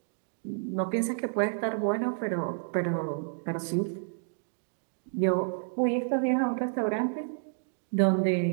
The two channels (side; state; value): left; silent; digital silence